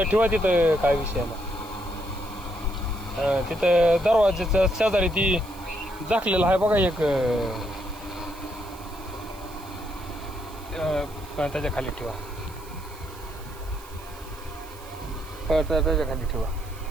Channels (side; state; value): right; noise; hiss, 21 dB below the sound